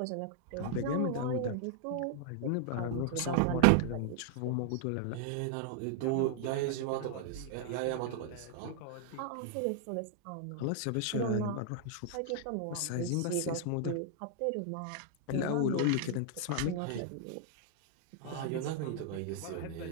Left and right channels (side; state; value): both; different; correlation 0.00